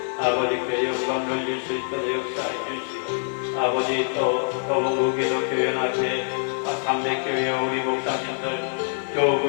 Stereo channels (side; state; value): right; silent; digital silence